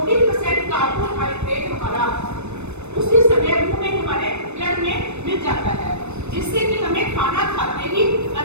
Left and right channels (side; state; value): left; late; 0.81 ms